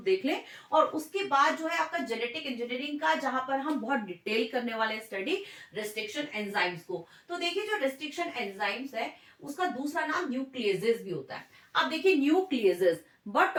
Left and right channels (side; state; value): both; identical; correlation 1.00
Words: लें। और उसके बाद जो है आपका जेनेटिक इंजीनियरिंग का, जहां पर हम बहुत डिटेल करने वाले स्टडी रिस्ट्रिक्शन एंजाइम्स को। तो देखिए, जो रिस्ट्रिक्शन एंजाइम्स है उसका दूसरा नाम न्यूक्लियेजेस भी होता है। अब देखिए, न्यूक्लियेजेस बट